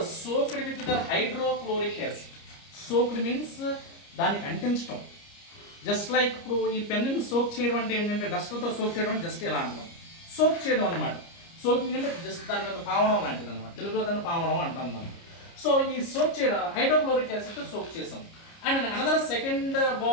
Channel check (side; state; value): right; late; 29 ms